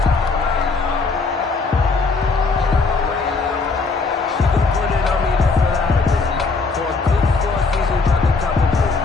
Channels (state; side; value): quieter; right; 4.1 dB